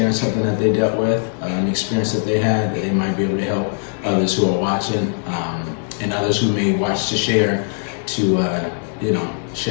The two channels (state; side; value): silent; right; 59 dB below the other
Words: something that they dealt with, an experience that they had that they might be able to help others who are watching, and others who may watch to share to you know,